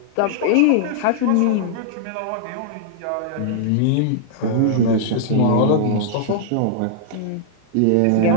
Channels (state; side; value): different; both; correlation -0.01